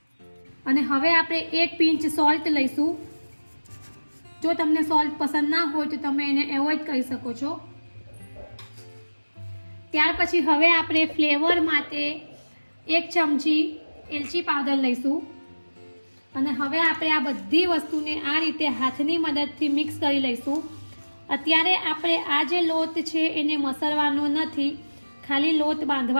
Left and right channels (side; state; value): both; inverted; correlation -1.00